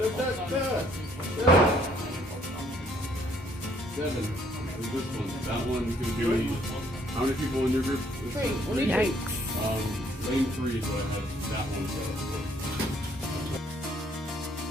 Seven. Is this one? That one's gonna be how many people in your group? Three. Yikes. Lane 3 is what I have. That one.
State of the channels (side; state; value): both; normal; correlation 0.65